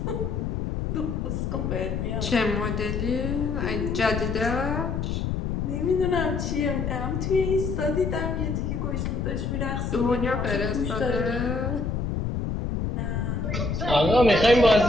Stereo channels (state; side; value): noise; left; rumble, 1 dB below the sound